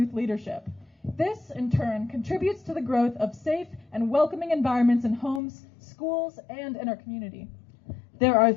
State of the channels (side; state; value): right; drops out; at 5.4 s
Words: leadership. This, in turn, contributes to the growth of safe and welcoming environments in homes, schools, and in our community. There are